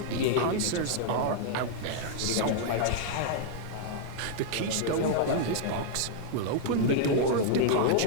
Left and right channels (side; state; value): both; different; correlation -0.01